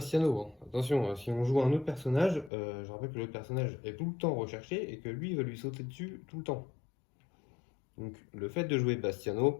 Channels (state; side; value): drops out; right; at 2.5 s